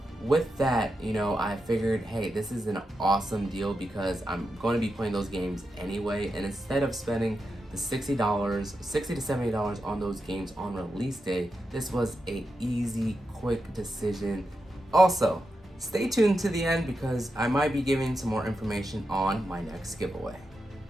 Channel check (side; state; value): both; normal; correlation 0.87